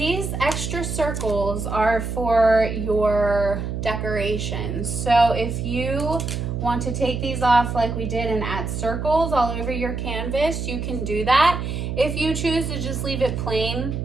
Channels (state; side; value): noise; right; hum, 4 dB below the sound